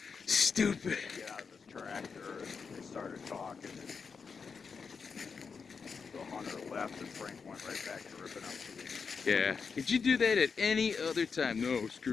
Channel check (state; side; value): quieter; right; 5.5 dB